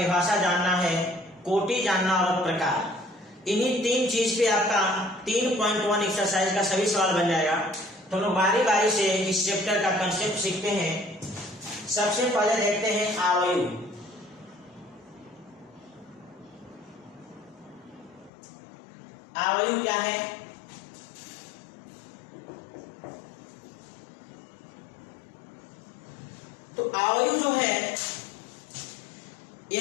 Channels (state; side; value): drops out; right; at 18.3 s